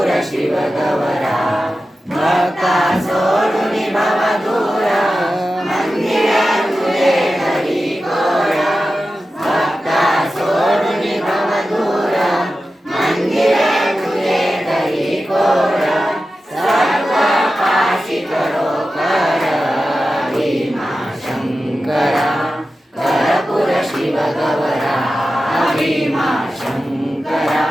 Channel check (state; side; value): normal; both; correlation 0.93